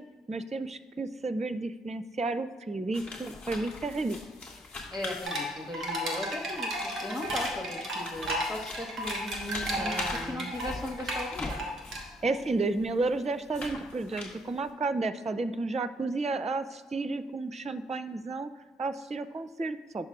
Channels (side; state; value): both; normal; correlation 0.70